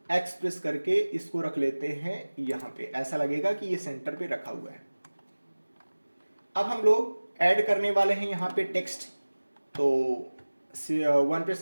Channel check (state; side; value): inverted; both; correlation -1.00